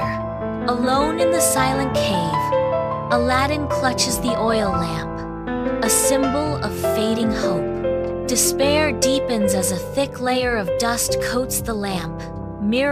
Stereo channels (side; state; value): both; identical; correlation 1.00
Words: Alone in the silent cave, Aladdin clutches the oil lamp, a symbol of fading hope. Despair deepens as a thick layer of dust coats the lamp,